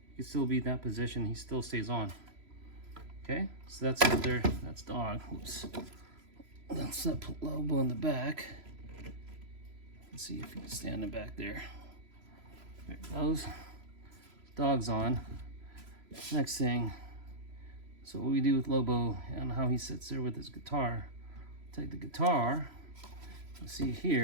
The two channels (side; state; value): left; late; 3.0 ms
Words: you can still be in that position. He still stays on. Okay, so that's up there. That's dog. Oops. Let's put Lobo in the back. Let's see if you can stand him back there. There it goes. Dog's on. Next thing. So what we do with Lobo and how he sits there with his guitar. Take the guitar. You see